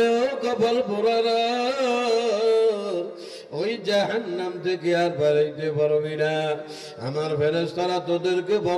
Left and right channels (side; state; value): both; identical; correlation 1.00